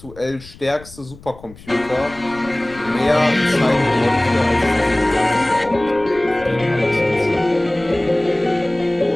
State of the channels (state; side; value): noise; left; rumble, 20 dB below the sound